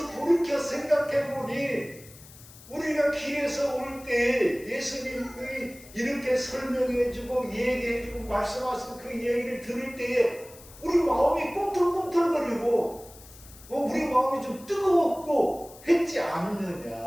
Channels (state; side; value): noise; left; hiss, 20 dB below the sound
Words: 돌이켜 생각해보니 우리가 길에서 올 때 예수님이 이렇게 설명해주고 얘기해주고 말씀하신 그 얘기를 들을 때에 우리 마음이 꿈틀꿈틀거리고 우리 마음이 좀 뜨거웠고 했지